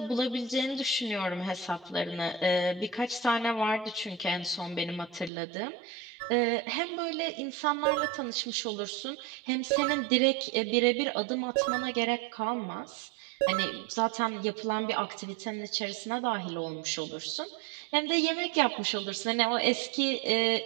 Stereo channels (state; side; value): drops out; left; at 5.3 s